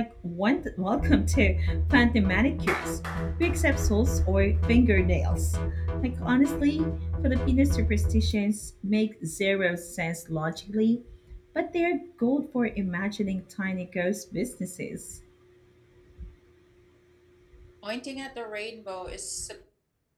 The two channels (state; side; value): identical; both; correlation 1.00